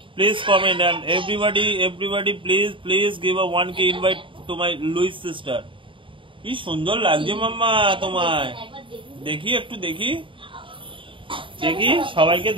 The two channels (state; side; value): late; left; 0.25 ms